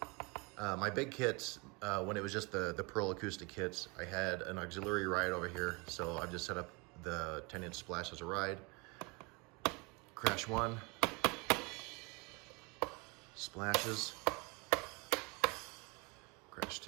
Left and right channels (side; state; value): left; quieter; 28.4 dB